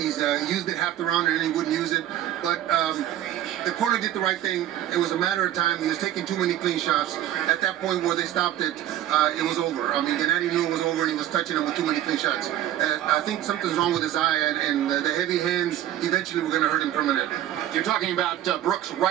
used it half the round and then he wouldn't use it. But the corner did the right thing. It was a matter of time. He was taking too many clean shots. At that point where they stopped it, it was over. I mean, Gennady knew it was over and he was touching him with too many clean shots. I think something's wrong with his eye, and the heavy hands eventually were going to hurt him permanently. You're talking about Brook's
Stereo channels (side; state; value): left; quieter; 12.2 dB